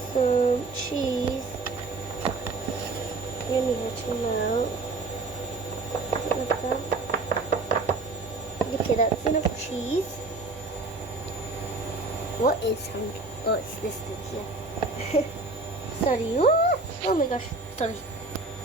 some cheese. Yummy to melt. Like that. Okay, that's enough cheese. What is sound? Oh, it's this thing here. Sorry. Oh my gosh. Sorry.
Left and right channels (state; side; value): quieter; left; 3.5 dB